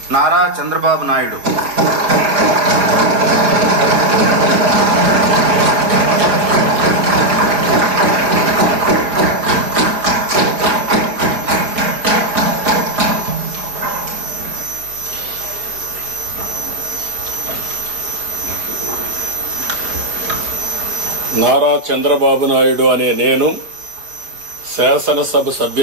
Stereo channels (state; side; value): late; left; 5.0 ms